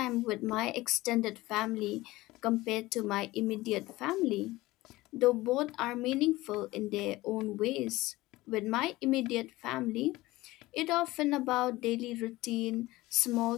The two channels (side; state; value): right; quieter; 18.9 dB